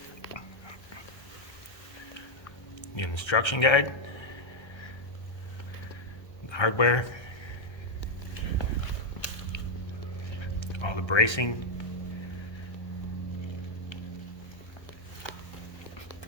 The instruction guide, the hardware, all the bracing,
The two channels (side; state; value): right; late; 1.3 ms